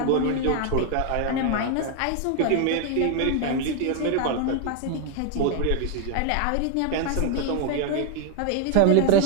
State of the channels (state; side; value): different; both; correlation 0.00